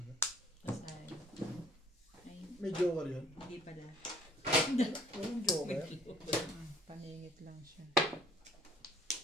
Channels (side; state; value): both; normal; correlation 0.57